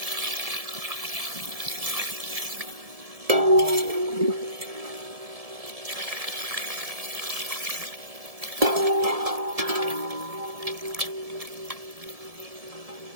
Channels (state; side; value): late; left; 1.7 ms